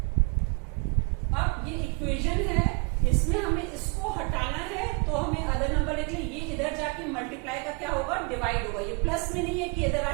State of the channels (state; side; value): quieter; left; 33.1 dB